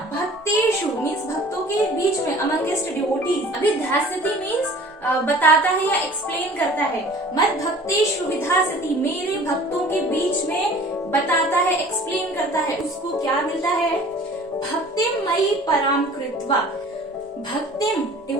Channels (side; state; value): both; normal; correlation 0.47